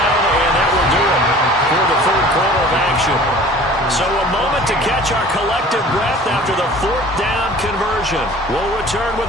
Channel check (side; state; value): both; normal; correlation 0.46